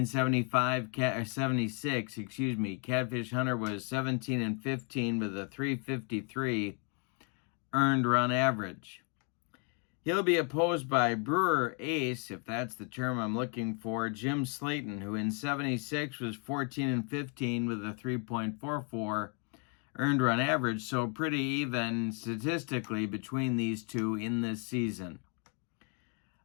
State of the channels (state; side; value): quieter; right; 38.5 dB